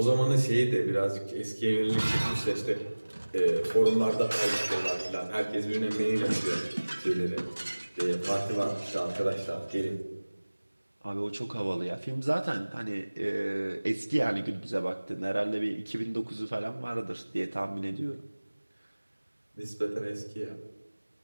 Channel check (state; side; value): inverted; both; correlation -1.00